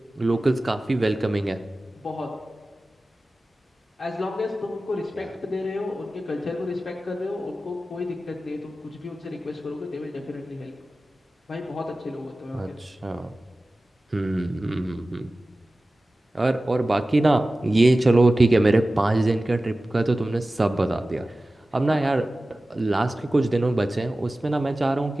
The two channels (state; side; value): normal; both; correlation 0.96